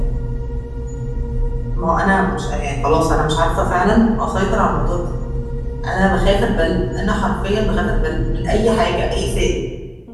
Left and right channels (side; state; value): both; identical; correlation 1.00